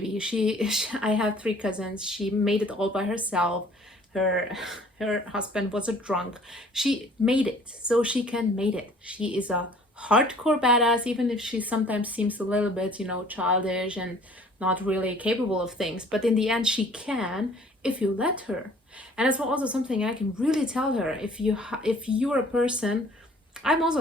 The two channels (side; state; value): both; normal; correlation 0.54